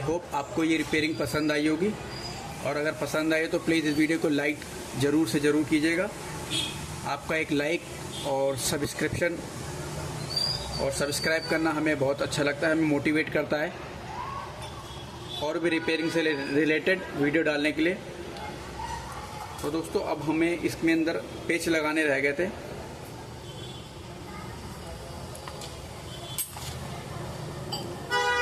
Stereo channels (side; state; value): both; identical; correlation 1.00